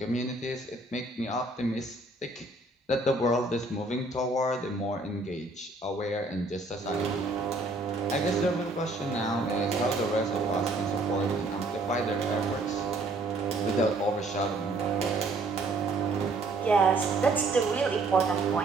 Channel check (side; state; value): left; quieter; 3.0 dB